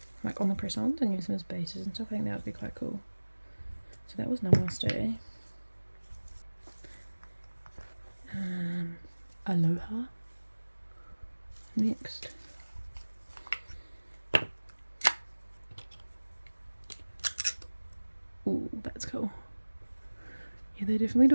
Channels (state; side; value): inverted; both; correlation -1.00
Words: like on the press-ons and use them as bases and stuff. I think that would be quite cool. So that was Namaste. Aloha. Next. Ooh, that's cool. Yeah, they definitely